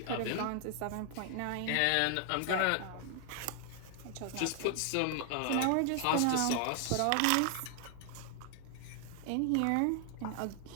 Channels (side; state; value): both; different; correlation 0.00